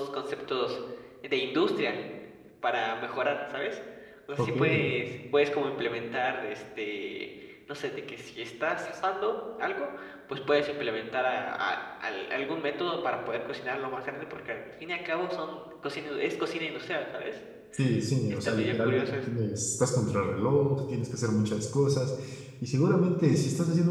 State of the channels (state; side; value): identical; both; correlation 1.00